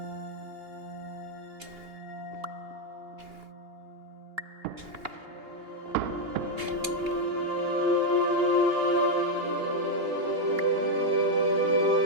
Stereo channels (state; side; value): late; left; 2.8 ms